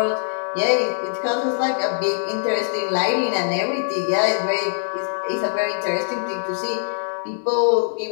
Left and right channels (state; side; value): silent; right; digital silence